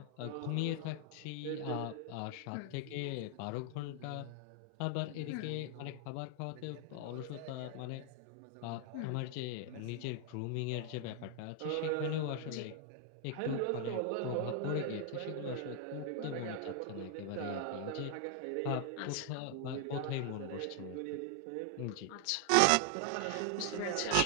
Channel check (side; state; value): both; different; correlation 0.00